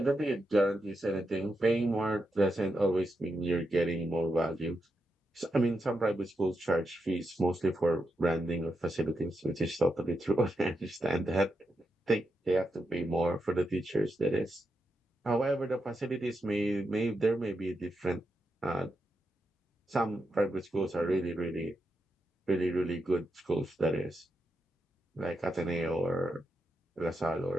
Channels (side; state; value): both; normal; correlation 0.85